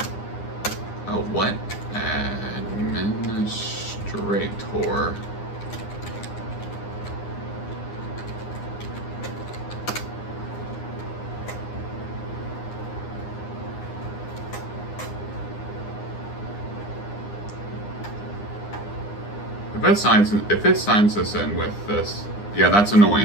Oh, what? Administrator. If it signs this in with this, yeah, that's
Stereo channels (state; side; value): late; right; 9.8 ms